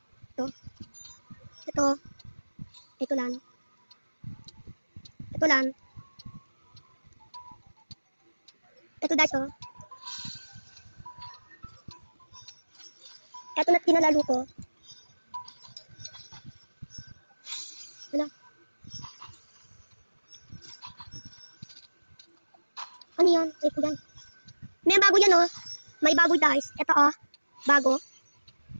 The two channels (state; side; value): inverted; both; correlation -1.00